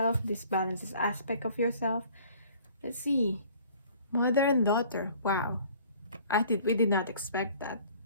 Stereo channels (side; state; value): both; inverted; correlation -0.53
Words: This balances aspect of yourself. Let's see. Mother and daughter. Wow. We did not expect that.